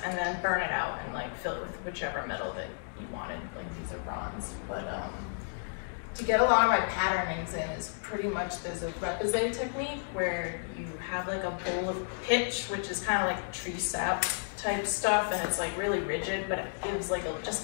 and then burn it out and like fill it with whichever metal that you wanted. Like these are bronze, but to get a lot of my patternings in is pretty much, there's a repoussé technique where you have like a bowl of pitch, which is kind of like tree sap type stuff, and it's like really rigid, but it gives like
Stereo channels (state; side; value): silent; right; 56 dB below the other